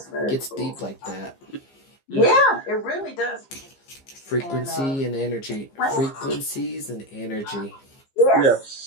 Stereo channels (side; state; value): right; late; 15 ms